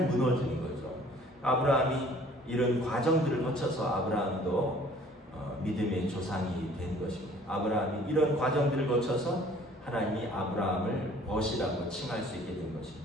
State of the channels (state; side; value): normal; both; correlation 0.54